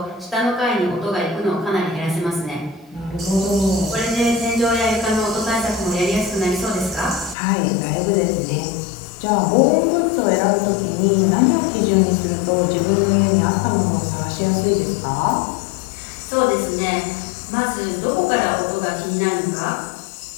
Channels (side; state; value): right; drops out; at 7.4 s